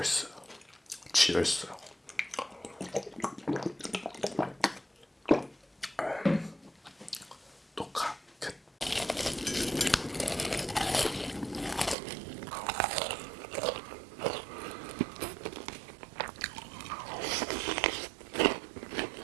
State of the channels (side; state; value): left; drops out; at 12.0 s